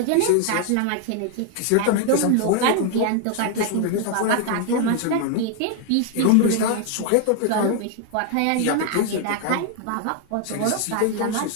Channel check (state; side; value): different; both; correlation 0.00